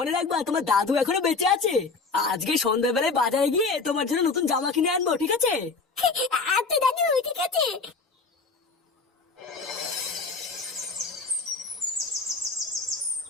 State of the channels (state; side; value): quieter; right; 4.2 dB